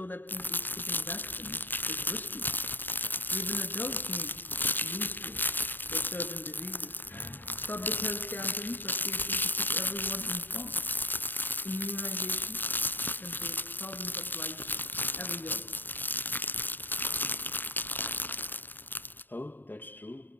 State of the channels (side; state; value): right; late; 0.092 ms